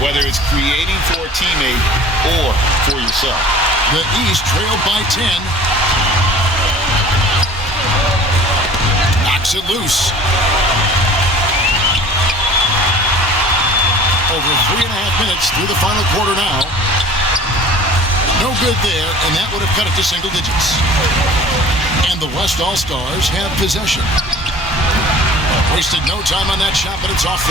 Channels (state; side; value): normal; both; correlation 0.46